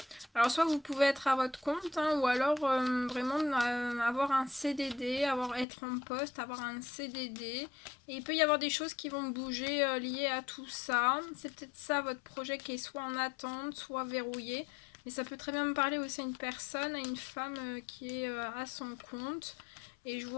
Alors, soit vous pouvez être à votre compte, hein, ou alors vraiment avoir un CDD, être en poste, avoir un CDD. Et il peut y avoir des choses qui vont bouger liées à tout ça. C'est peut-être ça votre projet qui est soit en attente, soit verrouillé. Mais ça peut très bien me parler aussi à une personne, à une femme qui est à son compte. Et je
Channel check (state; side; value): drops out; right; at 5.7 s